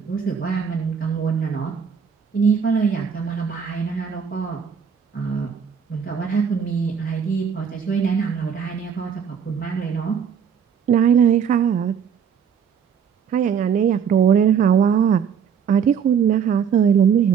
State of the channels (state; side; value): quieter; left; 7.3 dB